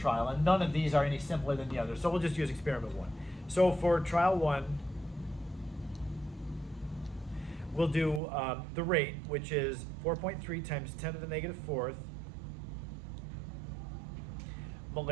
and none of these are any simpler than the others. So we'll just use experiment 1. So for trial 1, we'll do the rate, which is 4.3 times 10 to the negative 4th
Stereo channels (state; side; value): drops out; left; at 8.2 s